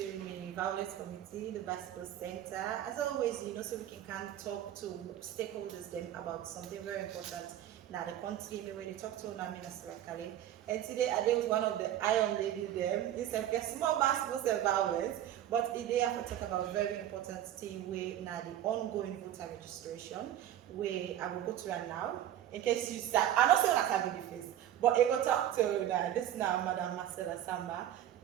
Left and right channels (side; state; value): left; quieter; 11.6 dB